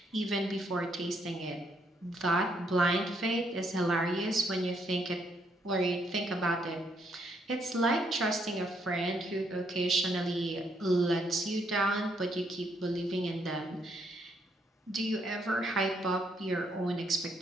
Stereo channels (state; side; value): normal; both; correlation 0.73